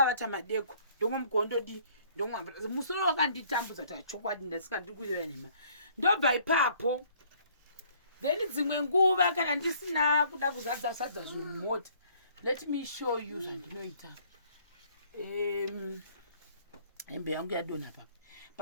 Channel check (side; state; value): both; inverted; correlation -0.60